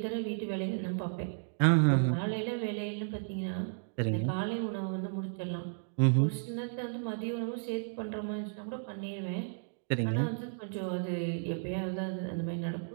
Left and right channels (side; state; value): left; silent; digital silence